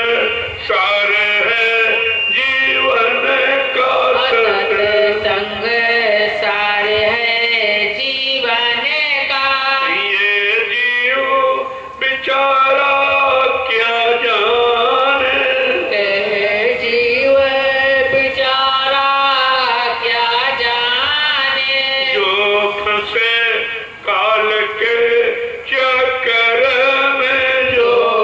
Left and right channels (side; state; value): both; identical; correlation 1.00